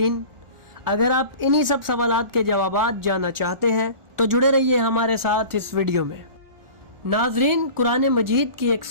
अगर आप इन्हीं सब सवालात के जवाबात जानना चाहते हैं तो जुड़े रहिए हमारे साथ इस वीडियो में। नाजरीन, कुरान मजीद की एक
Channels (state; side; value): late; left; 1.4 ms